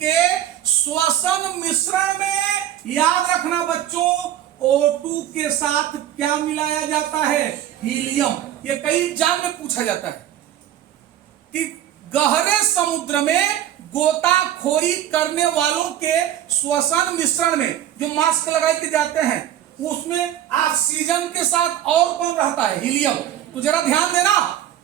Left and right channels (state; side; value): quieter; left; 11.5 dB